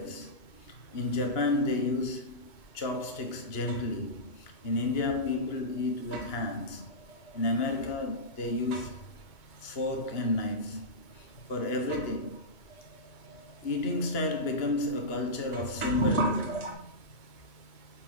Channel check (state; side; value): late; right; 2.8 ms